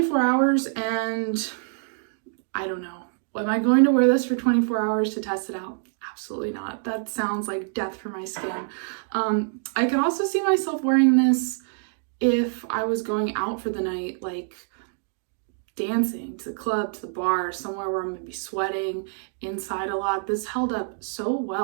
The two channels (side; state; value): left; silent; digital silence